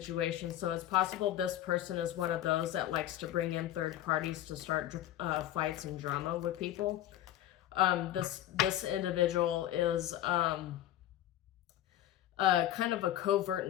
So it's possible this person is one of those that likes to bring in third parties to start fights and drama with people. This individual is kind of a covert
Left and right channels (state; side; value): quieter; right; 12.9 dB